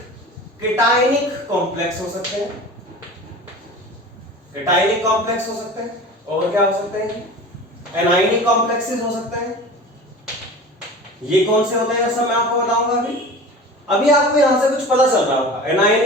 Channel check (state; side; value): normal; both; correlation 0.36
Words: केटायनिक कॉम्प्लेक्स हो सकते हैं, केटायनिक कॉम्प्लेक्स हो सकते हैं, और क्या हो सकते हैं, एनायनिक कॉम्प्लेक्सेस हो सकते हैं। ये कौन से होते हैं सब मैं आपको बताऊंगा। अभी आपको यहां से कुछ पता चल रहा होगा,